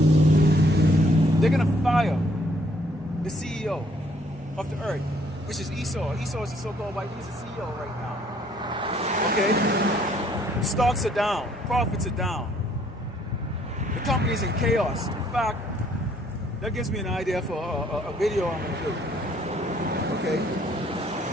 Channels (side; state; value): both; normal; correlation 0.64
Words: They're going to fire the CEO of the earth, which is Esau. Esau is the so-called white. He's the CEO right now. Okay? Stocks are down. Profits are down. The company is in chaos. In fact, that gives me an idea for a video I'm going to do. Okay?